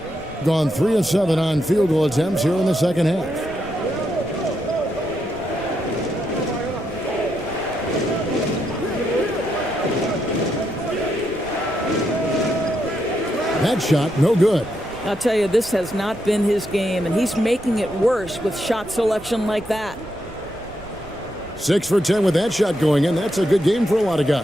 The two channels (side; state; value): right; noise; rumble, 19 dB below the sound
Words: Gone 3 of 7 on field goal attempts here in the second half. That shot, no good. I'll tell you, this has not been his game, and he's making it worse with shot selection like that. 6 for 10 with that shot going in. That's a good game for a lot of